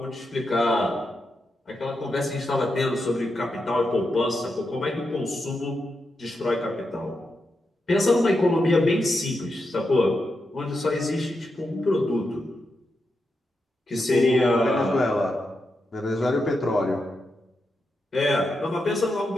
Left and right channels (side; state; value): both; normal; correlation 0.86